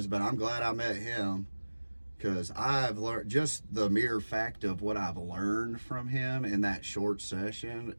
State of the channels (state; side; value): inverted; both; correlation -1.00